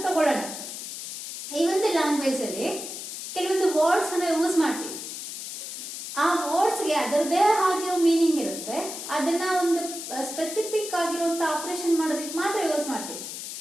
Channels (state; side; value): noise; left; hiss, 8 dB below the sound